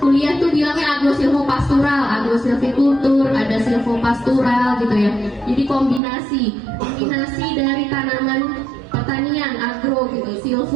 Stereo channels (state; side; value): drops out; left; at 6.0 s